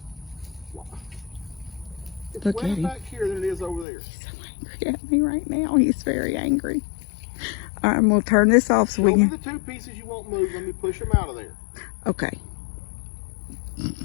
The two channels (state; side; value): drops out; right; at 3.9 s